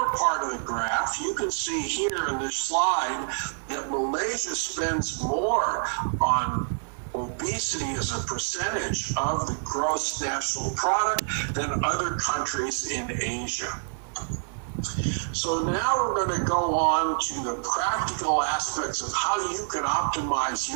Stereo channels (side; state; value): left; silent; digital silence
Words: part of the graph, you can see here in this slide that Malaysia spends more on obesity as a percentage of the gross national product than other countries in Asia. So now we're going to go on to the practical aspects of how you can optimize